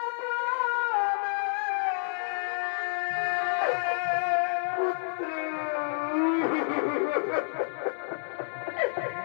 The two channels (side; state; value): right; silent; digital silence